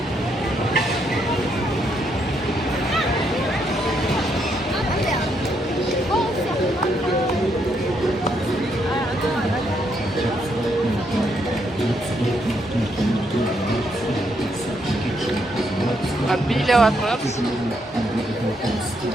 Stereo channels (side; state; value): both; normal; correlation 0.76